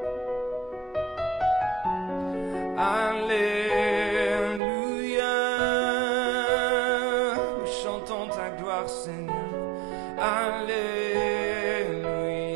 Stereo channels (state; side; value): drops out; left; at 4.6 s